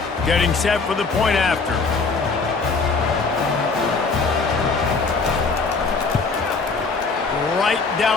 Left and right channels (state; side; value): quieter; right; 4.4 dB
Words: Getting set for the point after. Right